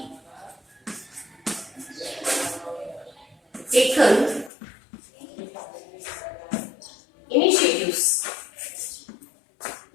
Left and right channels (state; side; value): drops out; right; at 4.5 s